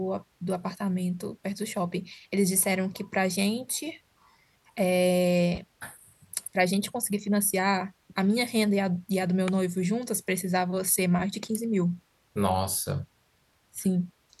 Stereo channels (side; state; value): both; identical; correlation 1.00